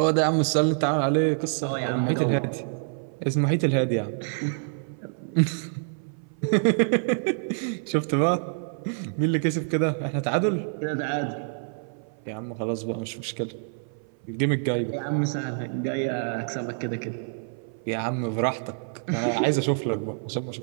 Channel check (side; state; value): left; silent; 56 dB below the other